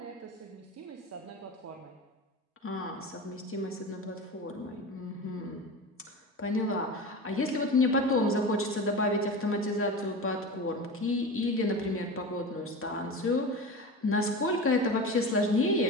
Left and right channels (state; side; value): normal; both; correlation 0.28